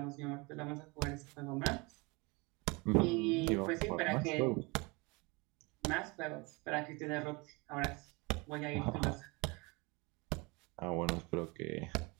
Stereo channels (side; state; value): left; quieter; 26.8 dB